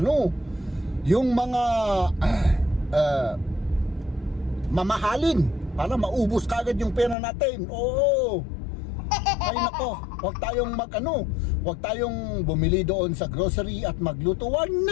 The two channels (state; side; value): drops out; right; at 7.2 s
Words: yung mga mamahalin para maubos ka agad yung pera natin. Ay nako, huwag tayong bumili doon sa grocery at magluto. Wag